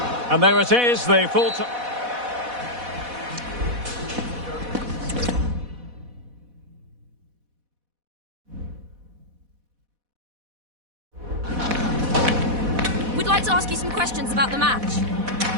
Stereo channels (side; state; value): left; late; 4.1 ms